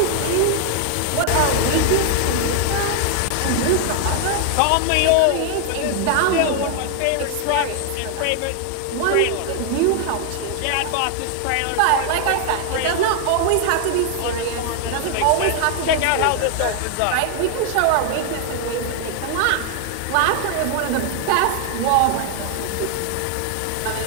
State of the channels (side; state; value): both; different; correlation 0.00